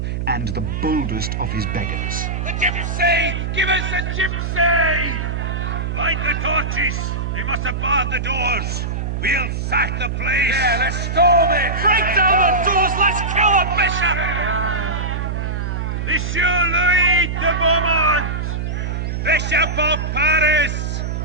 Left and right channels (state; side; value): noise; right; hum, 2 dB below the sound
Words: and the boldest of his beggars. The gypsy! Give us the gypsy! Light the torches! They must have barred the doors. We'll sack the place. Yeah, let's storm it! Break down the doors! Let's kill the bishop! Monsieur Louis de Beaumont, Bishop of Paris,